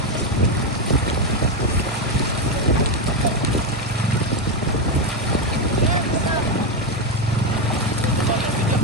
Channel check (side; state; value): both; normal; correlation 0.07